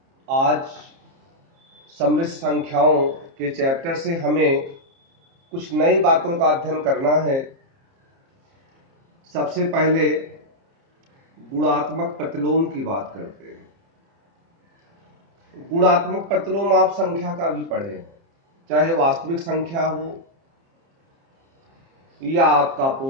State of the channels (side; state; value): left; late; 30 ms